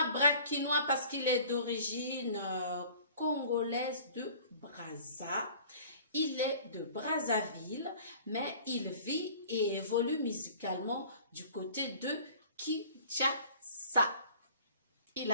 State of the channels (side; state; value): both; inverted; correlation -0.47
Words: parce qu'il est d'origine congolaise de Brazza. Il est de Brazzaville, mais il vit et évolue musicalement du côté de Kinshasa. Il